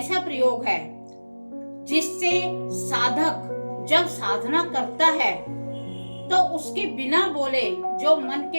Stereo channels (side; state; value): both; inverted; correlation -1.00